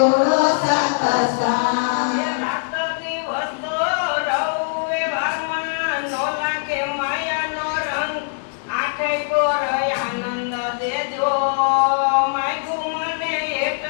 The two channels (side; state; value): right; silent; 61 dB below the other